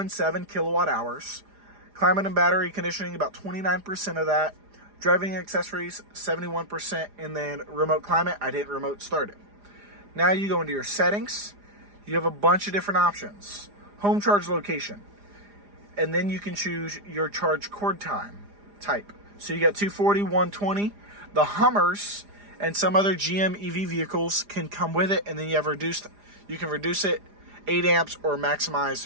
kilowatt hours. Climate and battery conditioning, about 29% of that. Driving accessories, 71%. And then remote climate, I didn't remote start it. Now you go into your settings. You have a bunch of different options. Home charge location. And then you can choose your charge cord time type. So you got 240, 120. The Hummers and some other GM EV vehicles can come with it, and then you can reduce it 8 amps or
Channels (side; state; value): left; late; 4.9 ms